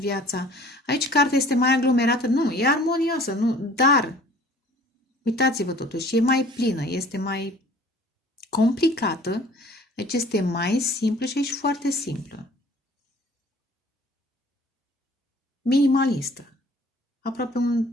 Aici cartea este mai aglomerată. Nu, e armonioasă, nu, dar uitați-vă totuși, e mai plină, este mai complicată. Deci este mai simplă și aici foarte simplă. Minimalistă. Aproape un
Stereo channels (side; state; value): both; normal; correlation 0.51